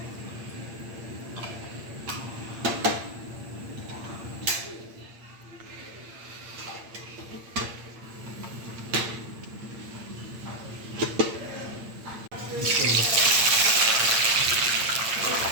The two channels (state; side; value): late; left; 8.8 ms